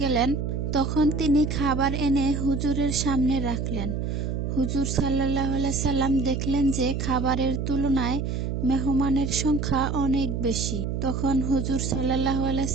গেলেন, তখন তিনি খাবার এনে হুজুরের সামনে রাখলেন। হুজুর সাল্লাল্লাহু আলাইহি সাল্লাম দেখলেন যে খাবারের তুলনায় মেহমানের সংখ্যা অনেক বেশি। তখন হুজুর সাল্লাল্লাহু আলাইহি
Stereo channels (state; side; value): noise; right; hum, 2 dB below the sound